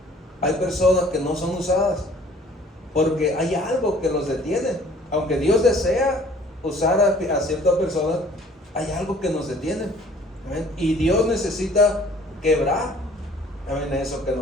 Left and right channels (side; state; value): both; normal; correlation 0.54